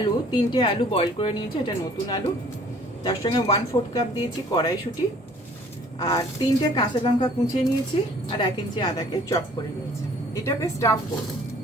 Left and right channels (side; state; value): both; normal; correlation 0.54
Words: 3টে আলু বয়েল করে নিয়েছি, এটা নতুন আলু। তার সঙ্গে 1/4 কাপ দিয়েছি কড়াইশুটি, আর 3টে কাঁচা লঙ্কা কুচিয়ে নিয়েছি, আর 1 ইঞ্চি আদাকে চপ করে নিয়েছি। এটাকে স্টাফ করব।